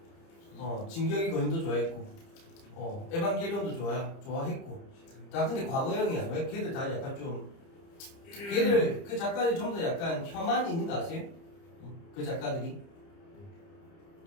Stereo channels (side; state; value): right; late; 30 ms